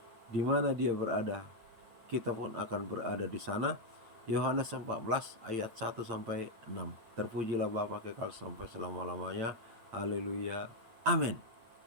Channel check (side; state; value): left; late; 8.8 ms